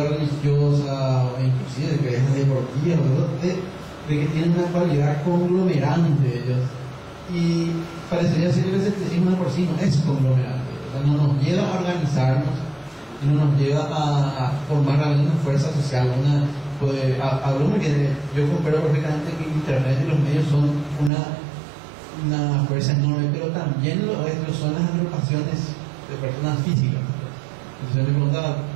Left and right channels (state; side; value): drops out; left; at 21.1 s